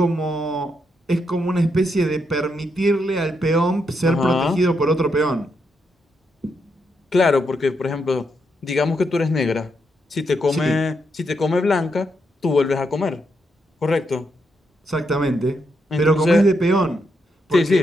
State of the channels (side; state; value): both; normal; correlation 0.80